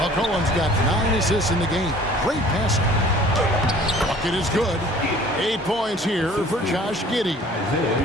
got 9 assists in the game. Great passing. Bucket is good. 8 points here for Josh Giddey. You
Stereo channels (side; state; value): both; normal; correlation 0.50